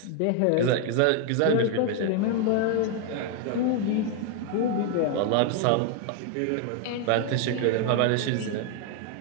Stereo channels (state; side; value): different; both; correlation 0.00